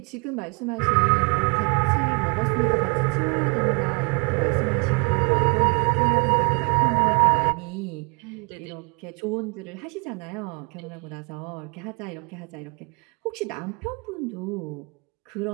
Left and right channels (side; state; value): left; quieter; 30.8 dB